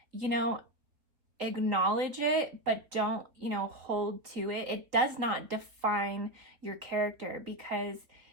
you know, acknowledge it, but don't, hold to it. It does not define your character, because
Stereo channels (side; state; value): left; late; 3.5 ms